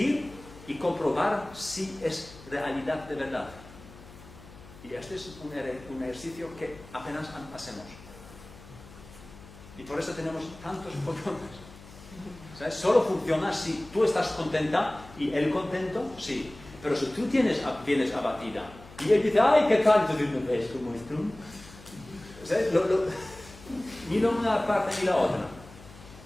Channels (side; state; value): left; noise; hum, 19 dB below the sound